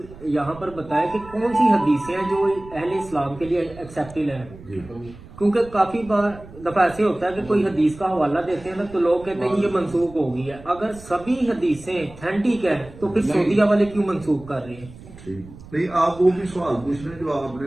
یہاں پر بتائیں کہ کون سی حدیثیں ہیں جو اہل اسلام کے لیے ایکسیپٹیبل ہیں، جی کیونکہ کافی بار دفعہ ایسے ہوتا ہے کہ کوئی حدیث کا حوالہ دیتے ہیں نا تو لوگ کہتے ہیں یہ منسوخ ہو گئی ہے۔ اگر سبھی حدیثیں اتھینٹک ہیں تو پھر سعودیہ والے کیوں منسوخ کر رہے ہیں؟ ٹھیک نہیں، آپ وہ بھی سوال پوچھ رہے ہیں جو آپ نے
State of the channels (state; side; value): noise; right; rumble, 18 dB below the sound